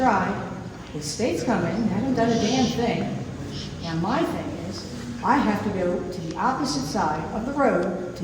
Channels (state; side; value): identical; both; correlation 1.00